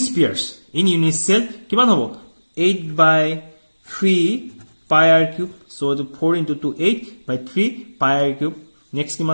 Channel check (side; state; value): both; inverted; correlation -1.00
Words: spheres in unit cell কিমান হ'ব 8/3 pi r cube. so the 4 into 2 8/3 pi r cube. next